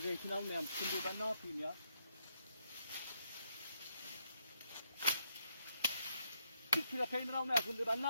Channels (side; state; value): both; inverted; correlation -0.76